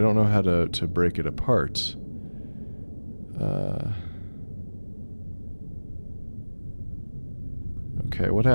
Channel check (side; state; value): both; inverted; correlation -1.00